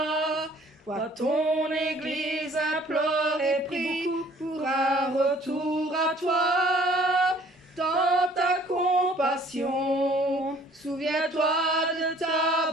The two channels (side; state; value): both; normal; correlation 0.55